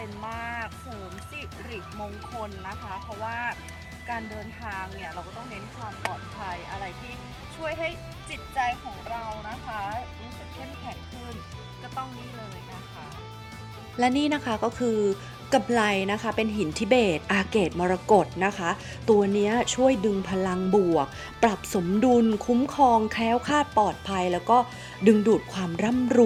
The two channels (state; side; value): identical; both; correlation 1.00